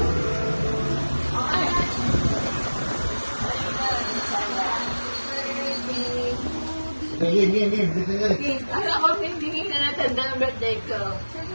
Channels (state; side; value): inverted; both; correlation -1.00